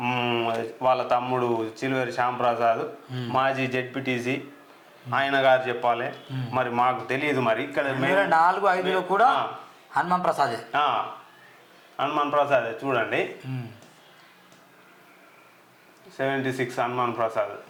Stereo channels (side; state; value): both; identical; correlation 1.00